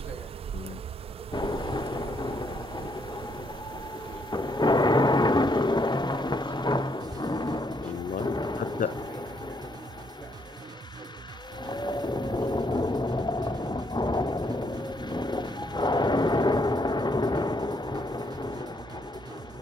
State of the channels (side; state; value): both; normal; correlation 0.72